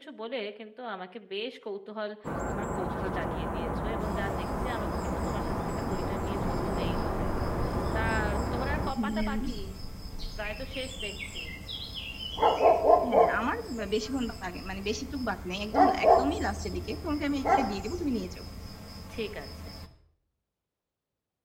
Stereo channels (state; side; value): identical; both; correlation 1.00